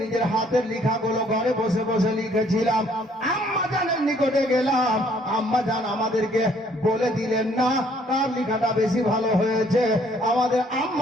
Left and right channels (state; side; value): normal; both; correlation 0.63